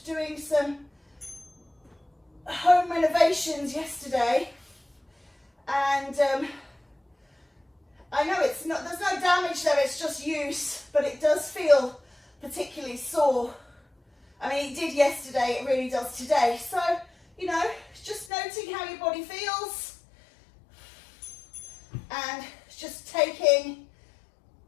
doing some home renovations yesterday, and I know it's not, there's no damage there, it's just use, but it does feel particularly sore. I mean, it did yesterday, it really does today. So, you know, just noting how your body feels and just taking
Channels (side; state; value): right; drops out; at 18.3 s